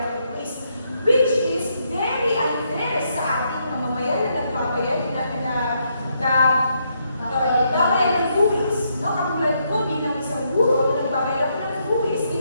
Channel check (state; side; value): inverted; both; correlation -0.77